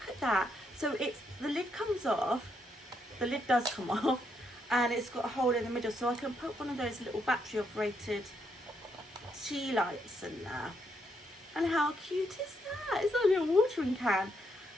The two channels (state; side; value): normal; both; correlation 0.76